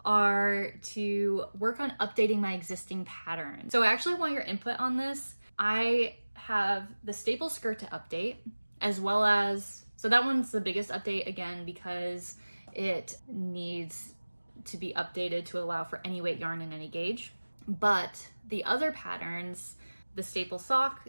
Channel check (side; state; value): both; inverted; correlation -1.00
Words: are to work on updating my existing patterns. So I actually want your input on this. I have the staple skirt to update, as well as, so that one's the biggest update again because it needs to be updated to allow for any weight yarn and any gauge. But the other patterns, the staple sock